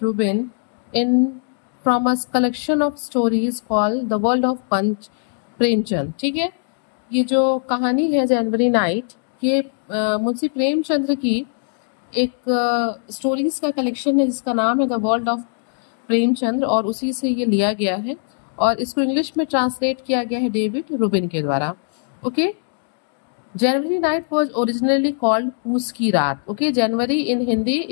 in from a collection of stories called The World of Punch Premchand. ठीक है, ये जो कहानी है जनवरी नाइट, ये मुंशी प्रेमचंद्र की एक स्टोरीज का कलेक्शन है जिसका नाम है द वर्ल्ड ऑफ प्रेमचंद्र और उसी से ये लिया गया है और इसको इंग्लिश में ट्रांसलेट किया गया है डेविड रूबिन के द्वारा. Okay, January night was originally called पूस की रात. Okay, January in Hindi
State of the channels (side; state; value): right; silent; digital silence